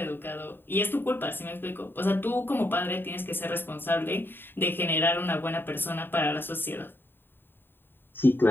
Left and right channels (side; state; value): right; late; 0.098 ms